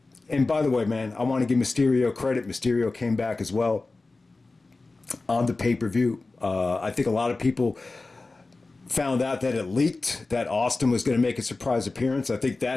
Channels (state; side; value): quieter; right; 3.5 dB